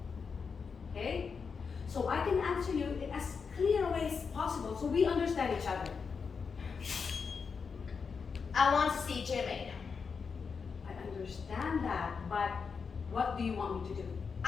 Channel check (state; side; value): quieter; right; 5.6 dB